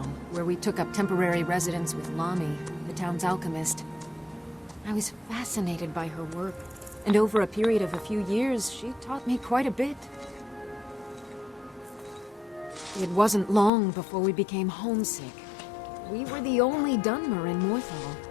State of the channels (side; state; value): right; drops out; at 13.7 s